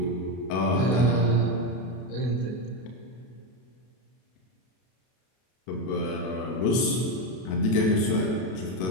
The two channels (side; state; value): right; late; 32 ms